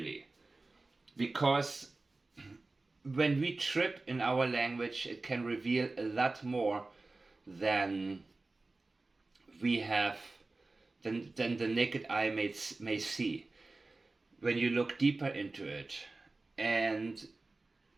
Because when we trip in our language, it can reveal a lot more than we have, than the naked eye may see when you look deeper into it. And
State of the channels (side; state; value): left; quieter; 3.3 dB